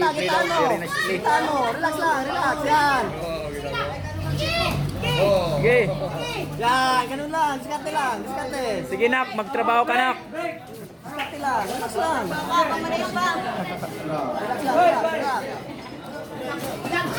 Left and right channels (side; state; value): both; identical; correlation 1.00